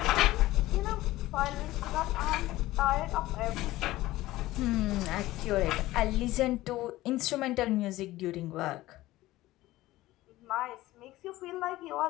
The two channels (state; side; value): quieter; right; 17.0 dB